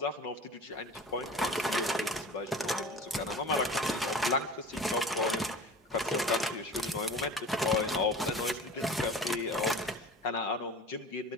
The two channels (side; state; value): both; normal; correlation 0.38